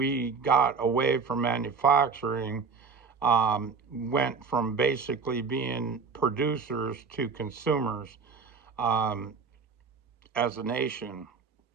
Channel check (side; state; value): left; quieter; 5.2 dB